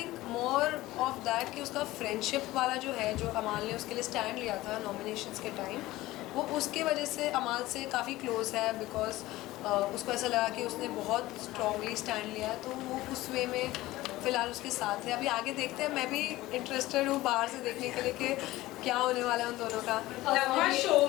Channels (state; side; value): quieter; right; 17.6 dB